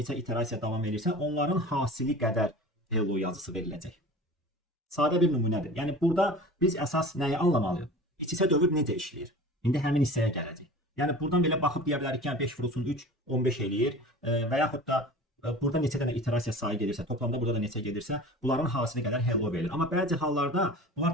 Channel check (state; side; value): normal; both; correlation 0.38